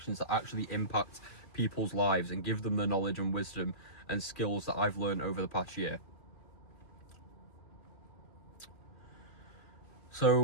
to actually impact people's lives and give them the knowledge and wisdom and skills that I've learned over the past year.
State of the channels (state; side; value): late; right; 2.4 ms